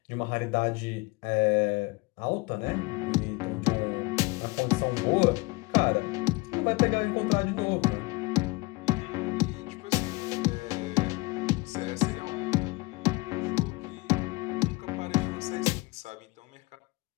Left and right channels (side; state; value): right; quieter; 24.2 dB